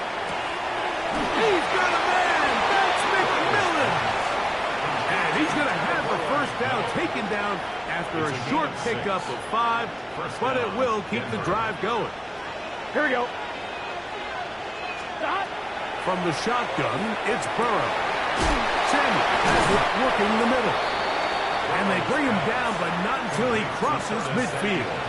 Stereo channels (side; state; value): both; identical; correlation 1.00